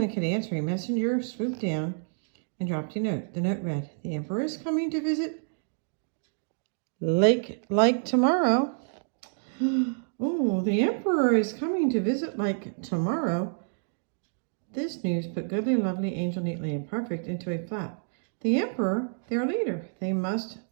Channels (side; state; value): left; silent; digital silence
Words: could answer, a messenger swooped down and dropped a note. The note read, "The Emperor is coming to visit like tomorrow." Oh, the Emperor is coming to visit like tomorrow. This news put Goodly, Lovely, Angel, Neatly, and Perfect into a flap. The Emperor, their leader. They must